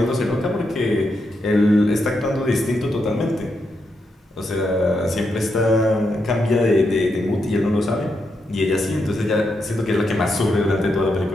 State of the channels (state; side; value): normal; both; correlation 0.82